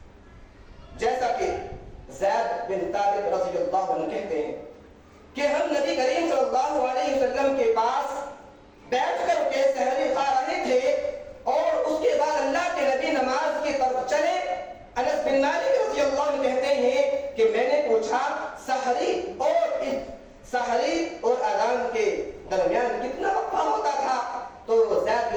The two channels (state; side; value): identical; both; correlation 1.00